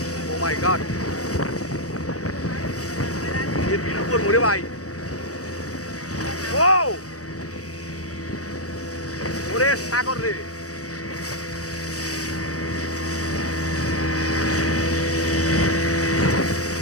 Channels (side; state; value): right; late; 0.66 ms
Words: ও মাই গড, এর বিল উপর মরে ভাই, ও ওরে সাগর রে,